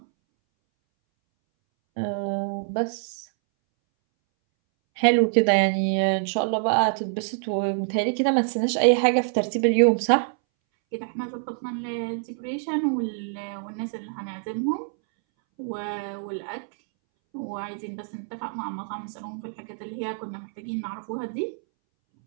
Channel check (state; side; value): silent; left; 61 dB below the other